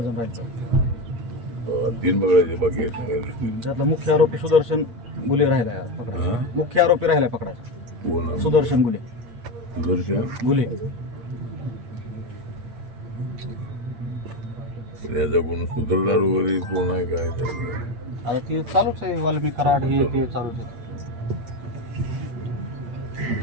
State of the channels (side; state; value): left; late; 8.6 ms